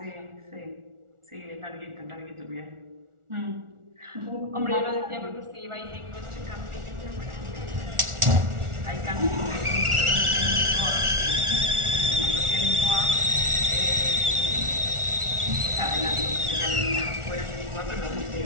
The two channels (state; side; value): late; left; 1.4 ms